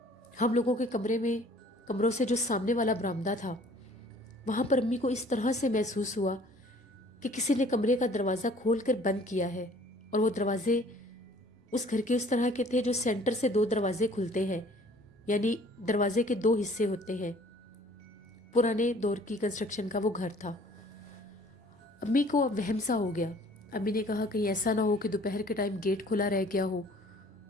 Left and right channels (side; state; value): both; normal; correlation 0.54